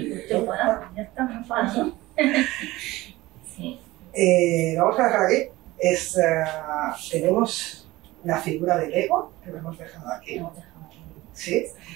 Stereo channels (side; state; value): left; quieter; 18.9 dB